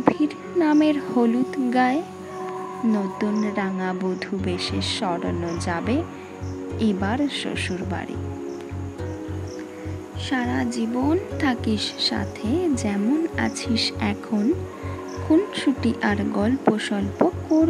নামের হলুদ গায়ে, নতুন রাঙা বধূ বেশে সরানো যাবে এবার শ্বশুর বাড়ি। সারা জীবন থাকিস সাথে যেমন আছিস এখন, খুনসুটি আর গল্প স্বল্প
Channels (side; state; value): both; identical; correlation 1.00